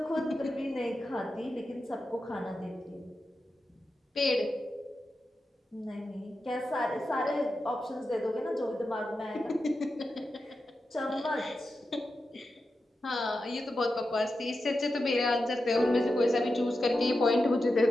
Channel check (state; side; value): normal; both; correlation 0.90